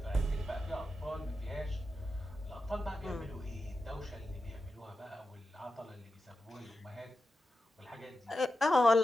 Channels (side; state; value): both; normal; correlation 0.90